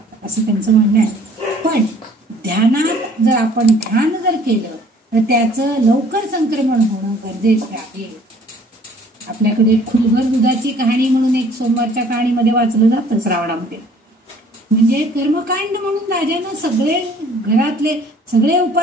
असं त्यांचं म्हणणं आहे. पण ध्यानात जर आपण ध्यान जर केलं तर त्याचं लवकर संक्रमण होणं गरजेचं आहे. आपल्याकडे खुलभर दुधाची कहाणी म्हणून एक सोमवारच्या कहाणीमध्ये वाचलं जातं श्रावणामध्ये. म्हणजे कर्मकांड म्हणून राजानं सगळे घरातले सगळे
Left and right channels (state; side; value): normal; both; correlation 0.55